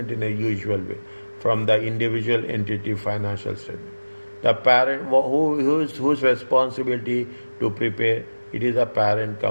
in a usual way from the individual entity financial statement. The parent, whose responsibility to prepare? It is a parent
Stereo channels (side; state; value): both; inverted; correlation -1.00